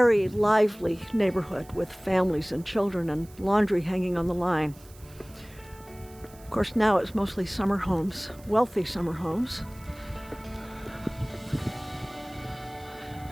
lively neighborhood with families and children and laundry hanging on the line. Of course, now it's mostly summer homes, wealthy summer homes.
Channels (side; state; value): right; noise; hiss, 24 dB below the sound